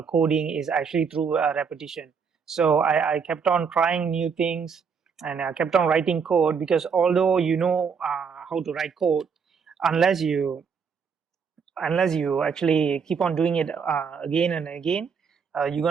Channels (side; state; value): left; quieter; 6.1 dB